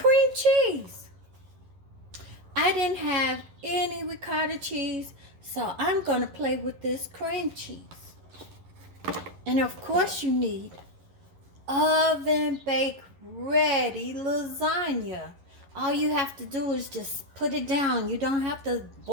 cheese. I didn't have any ricotta cheese, so I'm going to play with this cream cheese. And of course you need oven bake ready lasagna. All you have to do is just put it down. You don't have to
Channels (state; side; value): late; left; 11 ms